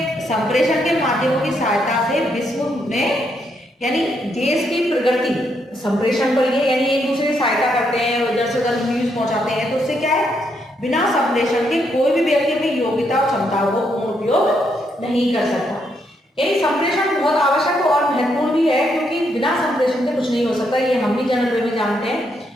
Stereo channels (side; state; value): both; normal; correlation 0.77